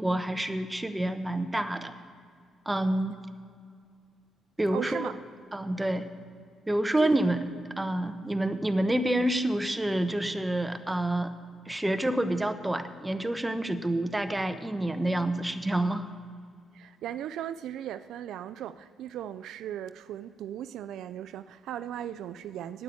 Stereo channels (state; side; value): normal; both; correlation 0.92